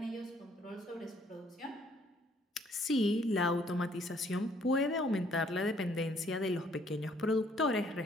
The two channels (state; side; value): normal; both; correlation 0.64